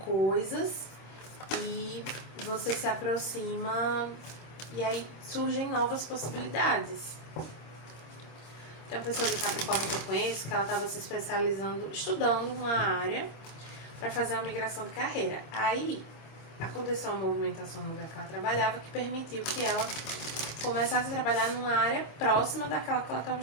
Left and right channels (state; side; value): late; right; 26 ms